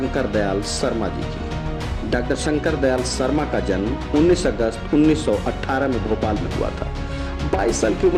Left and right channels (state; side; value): identical; both; correlation 1.00